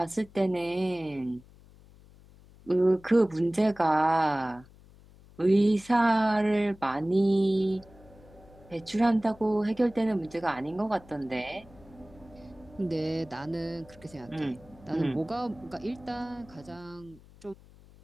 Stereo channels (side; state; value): left; noise; hum, 24 dB below the sound